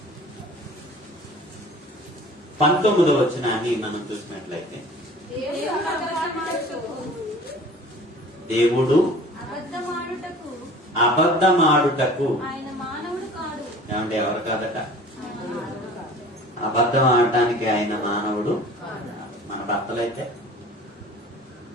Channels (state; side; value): normal; both; correlation 0.45